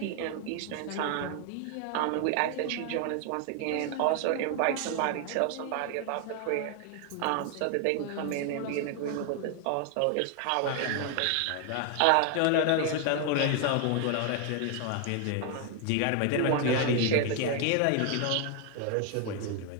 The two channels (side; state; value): both; different; correlation 0.01